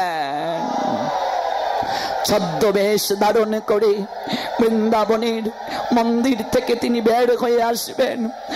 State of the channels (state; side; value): identical; both; correlation 1.00